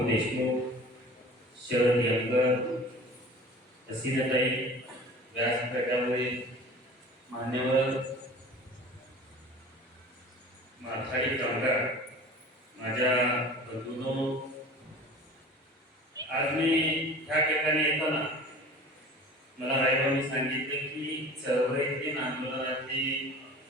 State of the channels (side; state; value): both; normal; correlation 0.41